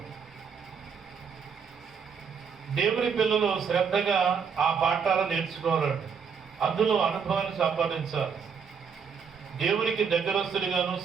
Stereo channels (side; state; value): left; quieter; 6.4 dB